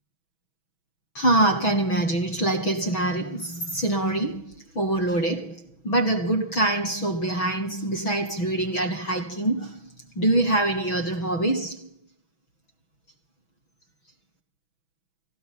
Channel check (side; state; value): right; late; 6.2 ms